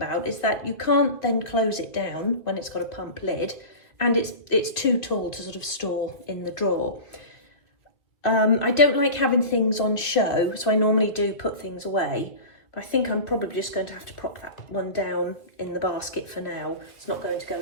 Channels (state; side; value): late; right; 2.5 ms